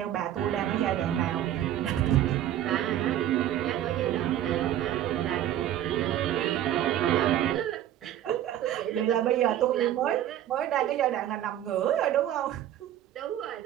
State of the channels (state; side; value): quieter; left; 11.8 dB